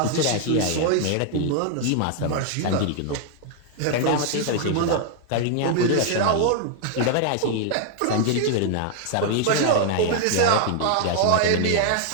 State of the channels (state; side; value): different; both; correlation 0.00